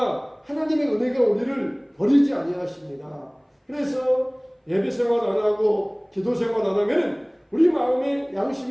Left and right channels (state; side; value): identical; both; correlation 1.00